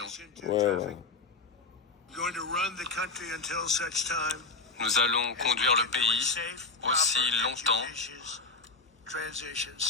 Ouais. Nous allons conduire le pays aussi longtemps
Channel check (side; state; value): right; quieter; 4.0 dB